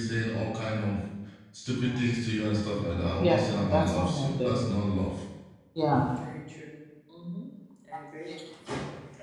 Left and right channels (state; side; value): identical; both; correlation 1.00